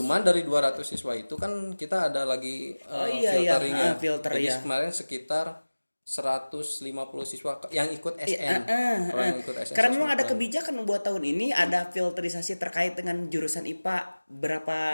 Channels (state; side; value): inverted; both; correlation -1.00